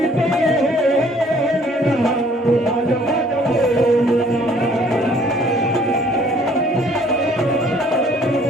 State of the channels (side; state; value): both; normal; correlation 0.58